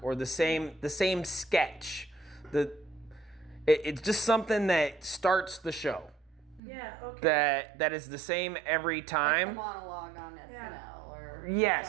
or the same sketch. It's just something that starts the show. Yeah. Okay. That is the same every Like the time. monologue on SNL Yeah. or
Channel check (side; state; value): left; drops out; at 6.6 s